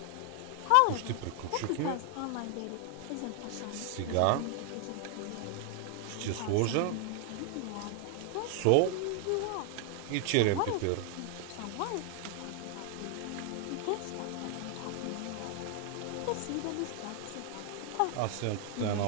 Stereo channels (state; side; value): different; both; correlation 0.00